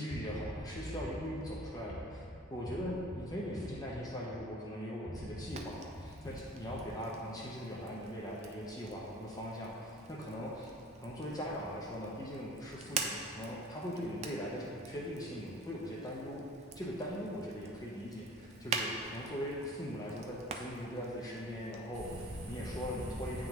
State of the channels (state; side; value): normal; both; correlation 0.45